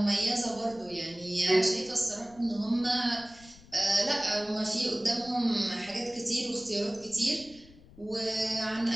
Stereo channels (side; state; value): left; noise; rumble, 23 dB below the sound